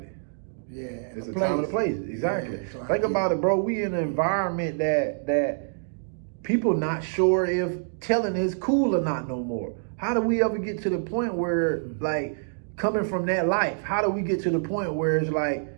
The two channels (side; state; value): left; silent; digital silence